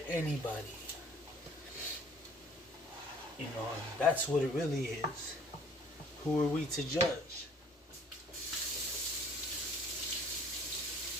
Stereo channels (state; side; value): normal; both; correlation 0.54